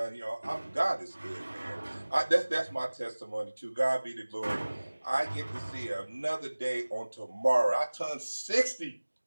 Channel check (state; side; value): inverted; both; correlation -1.00